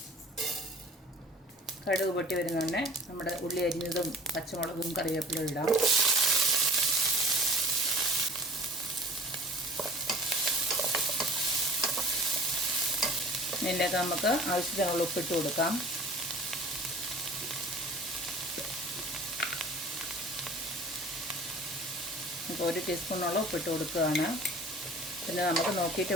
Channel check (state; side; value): normal; both; correlation 0.44